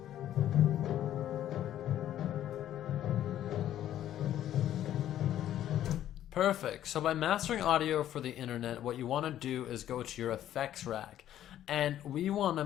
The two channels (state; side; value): quieter; right; 11.8 dB